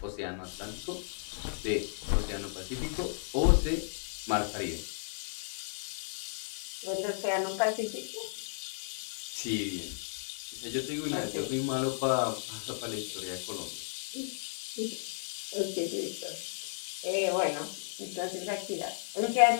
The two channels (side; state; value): right; silent; 55 dB below the other